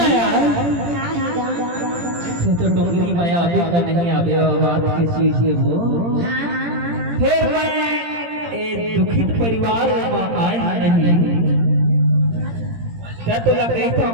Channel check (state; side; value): late; left; 17 ms